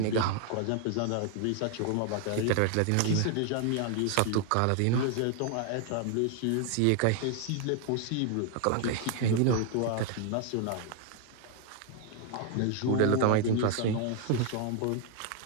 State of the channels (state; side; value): different; both; correlation 0.00